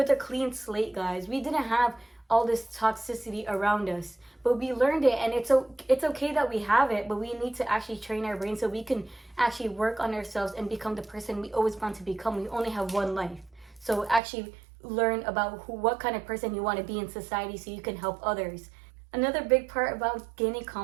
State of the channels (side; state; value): left; drops out; at 14.2 s